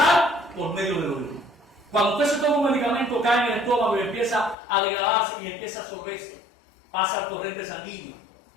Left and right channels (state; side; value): drops out; right; at 4.5 s